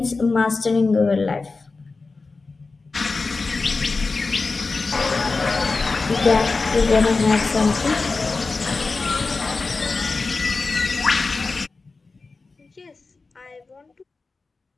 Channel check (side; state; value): right; quieter; 3.9 dB